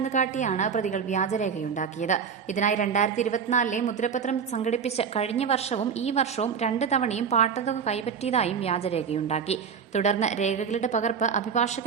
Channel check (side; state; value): left; quieter; 6.7 dB